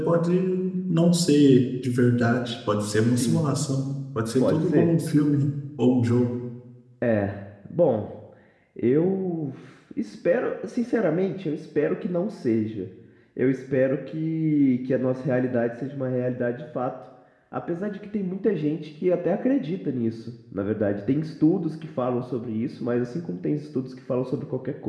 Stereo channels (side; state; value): both; identical; correlation 1.00